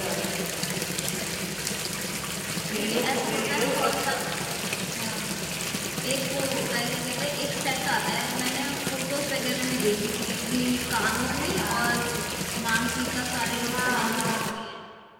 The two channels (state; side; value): identical; both; correlation 1.00